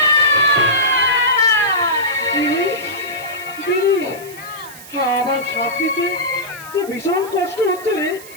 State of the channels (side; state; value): right; noise; hiss, 17 dB below the sound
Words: আমার শাস্তিতে যে ভীষণ কষ্ট হচ্ছে রে,